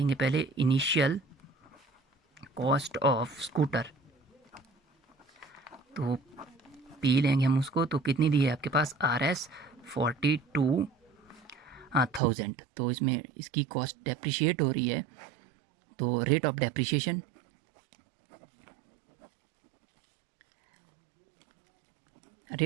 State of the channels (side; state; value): left; drops out; at 12.2 s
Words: पहले इनिशियल कॉस्ट ऑफ स्कूटर, तो पी लेंगे हम उसको, तो कितनी दी है आपके पास Rs 42,000। तो इसमें इसकी कॉस्ट डेप्रिशिएट हो रही है, तो रेट ऑफ डेप्रिशिएशन